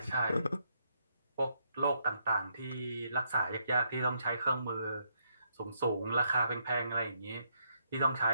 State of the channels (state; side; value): inverted; both; correlation -0.75